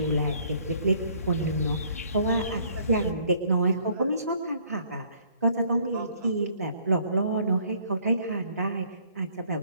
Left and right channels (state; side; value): inverted; both; correlation -0.61